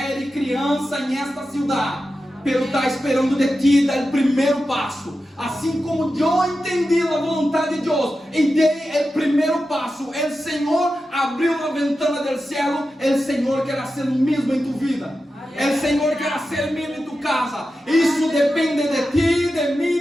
e criança nesta cidade, pero está esperando de ti dar o primeiro passo. Assim como eu entendi a vontade de Deus e dei o primeiro passo, o Senhor abriu a ventana do céu. O Senhor quer fazer o mesmo em tu vida. O Senhor quer fazer o mesmo em tu casa. Isso depende de ti, de mim,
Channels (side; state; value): both; normal; correlation 0.91